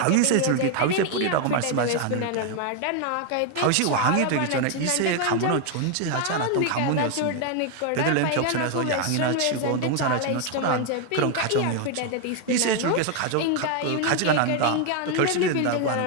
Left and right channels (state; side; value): different; both; correlation 0.01